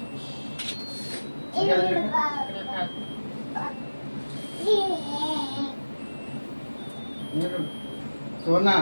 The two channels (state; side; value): inverted; both; correlation -1.00